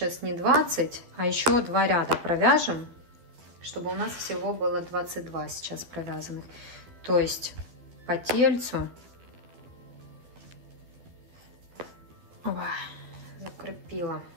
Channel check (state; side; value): late; left; 12 ms